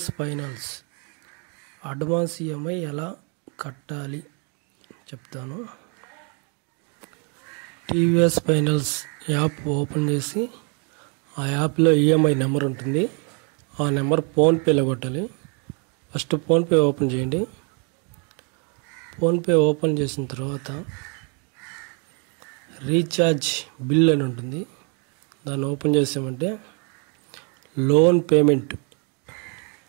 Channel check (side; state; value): left; quieter; 37.0 dB